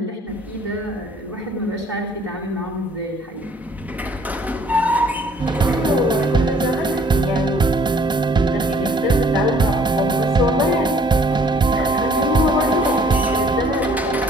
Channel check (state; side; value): normal; both; correlation 0.58